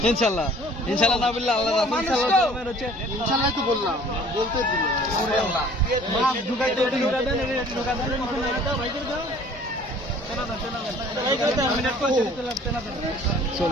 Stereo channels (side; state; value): both; normal; correlation 0.52